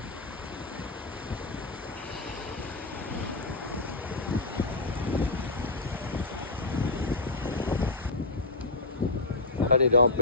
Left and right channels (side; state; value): right; quieter; 3.0 dB